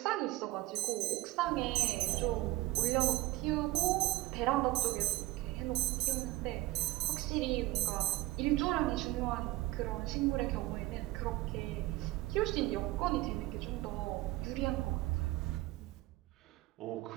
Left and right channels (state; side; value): quieter; left; 18.2 dB